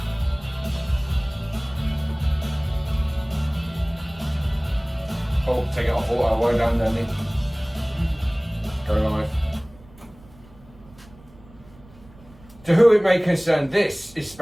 Oh, take it off auto, way down, Danny. Go live. To who it may concern, this is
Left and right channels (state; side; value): noise; right; rumble, 24 dB below the sound